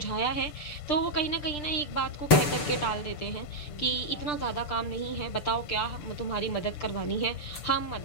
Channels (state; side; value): late; right; 6.9 ms